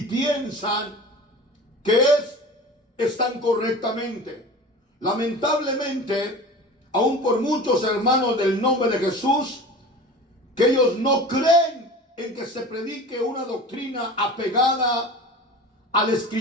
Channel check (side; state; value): both; normal; correlation 0.36